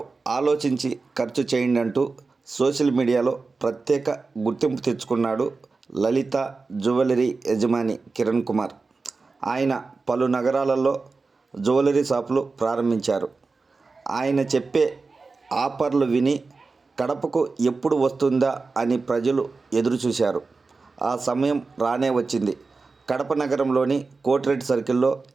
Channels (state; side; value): quieter; left; 4.1 dB